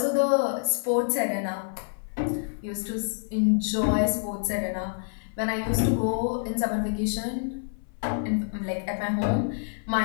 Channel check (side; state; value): right; silent; 60 dB below the other